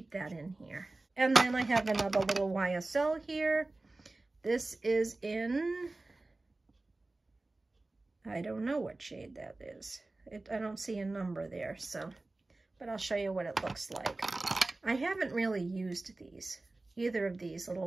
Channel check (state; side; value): quieter; left; 3.1 dB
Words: that in here. And then I have another little YSL here. This is in, I don't know what shade that is. I don't see a number there, so, but I'll show you what it looks like. I haven't really used these, either of these